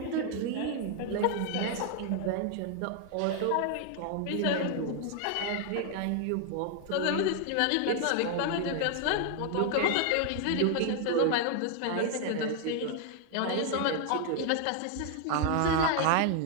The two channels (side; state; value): both; different; correlation 0.00